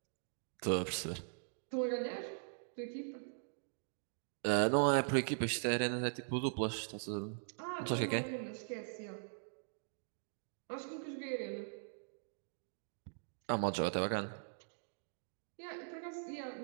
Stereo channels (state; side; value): silent; left; digital silence